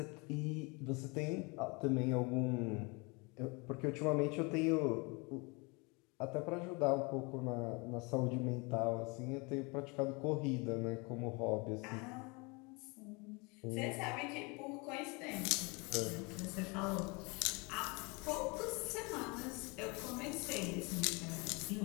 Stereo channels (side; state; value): right; quieter; 28.8 dB